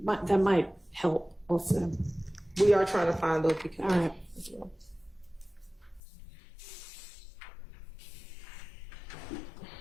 might help also. We are trying to find those because. All right. As well.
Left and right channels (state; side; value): drops out; right; at 6.0 s